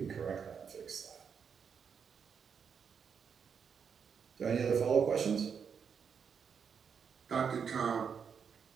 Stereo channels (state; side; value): quieter; left; 6.8 dB